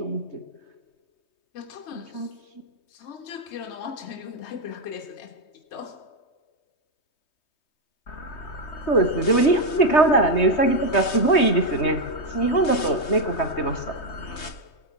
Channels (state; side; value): late; right; 3.2 ms